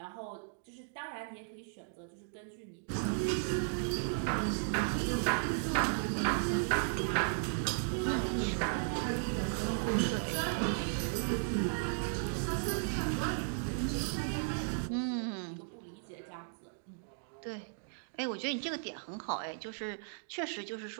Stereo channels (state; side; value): silent; left; digital silence